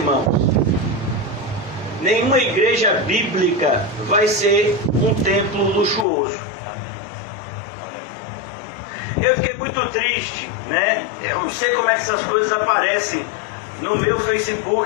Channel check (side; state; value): right; drops out; at 6.1 s